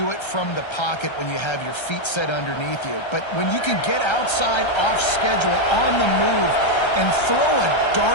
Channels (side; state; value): right; late; 1.3 ms